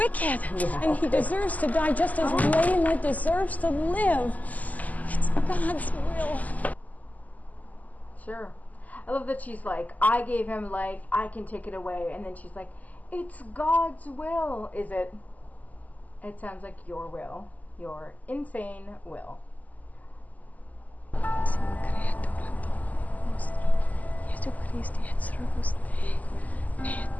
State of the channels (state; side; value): late; right; 0.078 ms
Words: Yeah, and he deserves to die just as Layla deserves to live. It's God's will. Sure. I love that she's like, I gave him life, I can take it away. And then she's like, it's God's will. Is it? It sounds like your will. Your insane will.